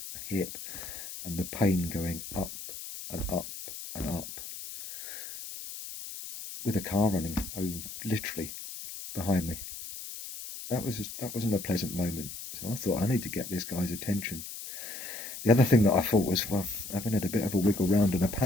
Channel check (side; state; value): left; noise; hiss, 10 dB below the sound